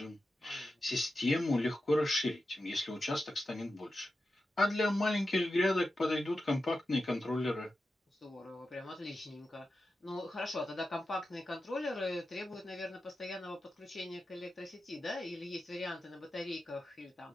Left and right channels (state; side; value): normal; both; correlation 0.91